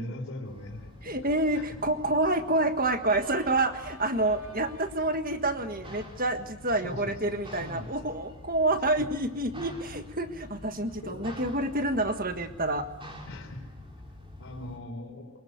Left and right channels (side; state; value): both; normal; correlation -0.10